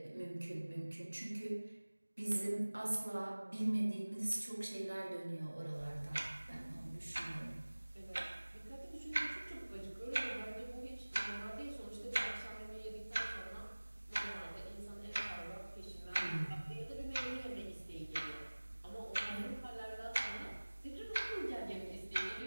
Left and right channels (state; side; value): inverted; both; correlation -1.00